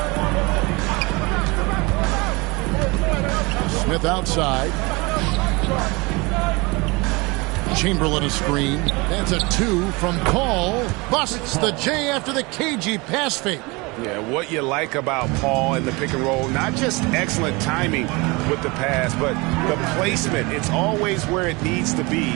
Smith outside. Chamberlain a screen. That's a 2 from Paul. Busts the J after the cagey pass fake. Yeah, what you like about Paul in the pick and roll, not just excellent timing with the pass, but the placement. It's always where it needs to be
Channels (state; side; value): quieter; left; 25.8 dB